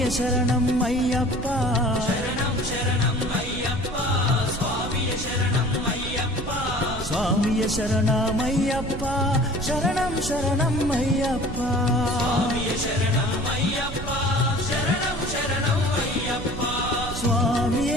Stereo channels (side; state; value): right; noise; rumble, 9 dB below the sound